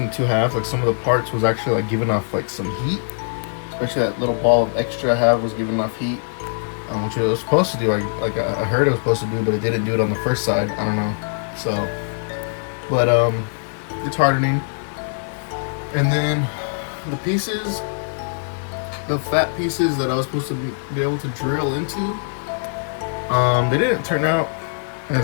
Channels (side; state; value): right; silent; digital silence